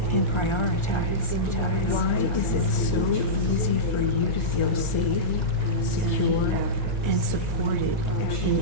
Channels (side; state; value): right; late; 1.4 ms